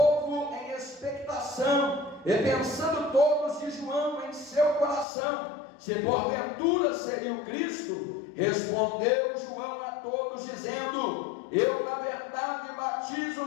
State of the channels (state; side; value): drops out; right; at 5.1 s